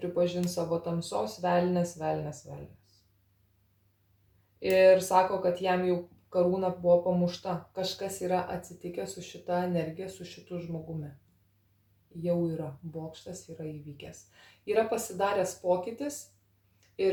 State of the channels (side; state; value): both; identical; correlation 1.00